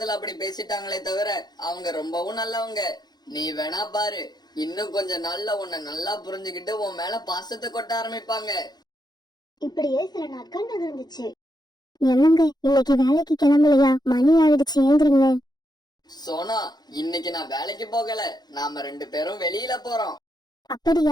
அப்படி பேசிட்டாங்களே தவிர அவங்க ரொம்பவும் நல்லவங்க. நீ வேணா பாரு, இன்னும் கொஞ்சம் நாள்ல உன்னை நல்லா புரிஞ்சுக்கிட்டு உன் மேல பாசத்தை கொட்ட ஆரம்பிப்பாங்க. இப்படியே சில நாட்கள் நகர்ந்துச்சு. என்னங்க இன்னைக்கு வேலைக்கு கிளம்பலையா? மணி ஆயிடுச்சு, ஏந்திரிங்க. சோனா, இன்னைக்கு நான் வேலைக்கு போகல. நாம 2 பேரும் வெளியில போறோம்.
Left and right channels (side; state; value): right; late; 0.20 ms